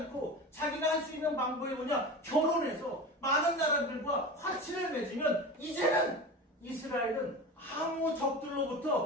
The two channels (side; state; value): both; normal; correlation 0.30